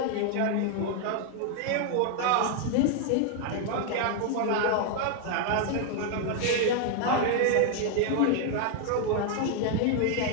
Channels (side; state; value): both; different; correlation 0.00